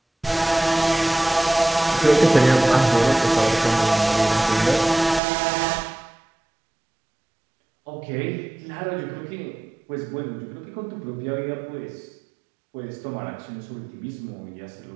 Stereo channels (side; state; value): left; drops out; at 5.2 s